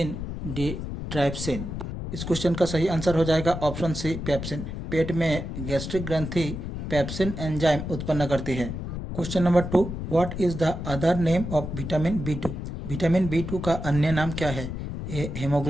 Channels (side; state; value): left; noise; rumble, 6 dB below the sound